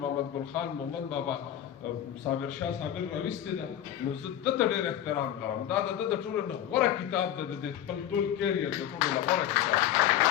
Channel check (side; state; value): right; quieter; 11.2 dB